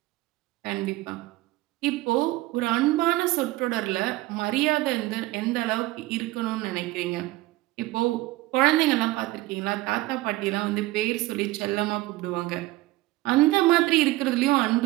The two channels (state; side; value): quieter; left; 18.9 dB